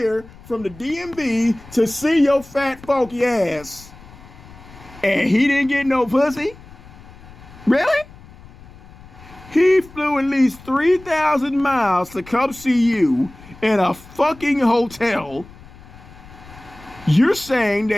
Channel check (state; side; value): noise; left; rumble, 21 dB below the sound